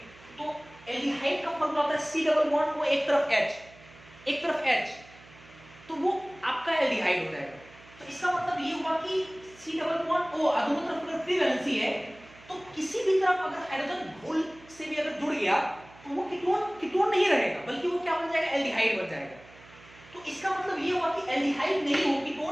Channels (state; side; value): noise; right; hum, 23 dB below the sound